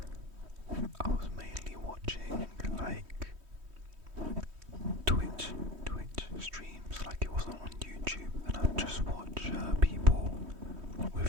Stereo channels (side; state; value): left; late; 3.2 ms